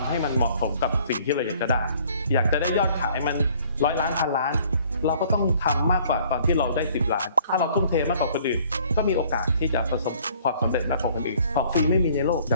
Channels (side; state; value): both; inverted; correlation -0.57